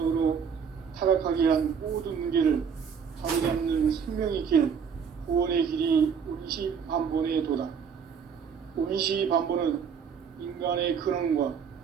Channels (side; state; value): left; quieter; 6.8 dB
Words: 타락하게 한 모든 문제를 바로잡는 생명의 길, 구원의 길이 운시반본의 도다. 운시반본은 인간의 근원과